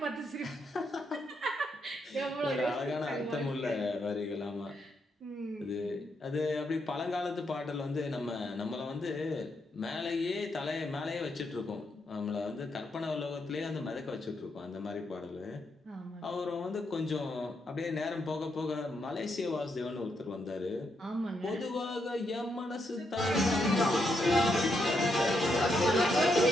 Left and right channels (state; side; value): normal; both; correlation 0.79